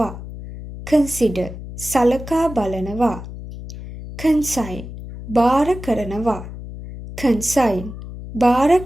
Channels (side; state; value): left; noise; hum, 11 dB below the sound